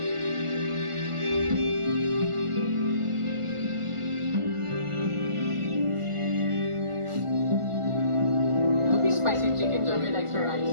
Spicy chicken joy with extra rice.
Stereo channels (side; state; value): left; late; 1.4 ms